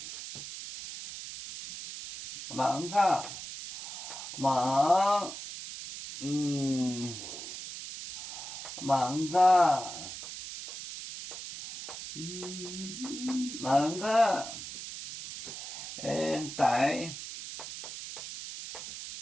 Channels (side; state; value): right; noise; hiss, 9 dB below the sound